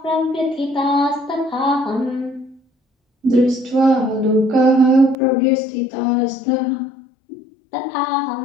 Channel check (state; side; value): drops out; right; at 5.2 s